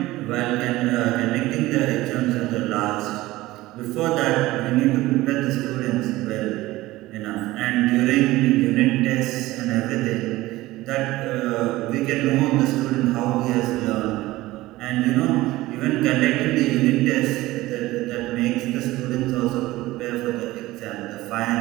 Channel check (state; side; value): quieter; left; 17.9 dB